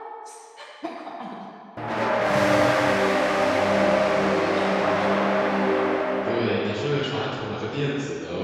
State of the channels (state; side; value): identical; both; correlation 1.00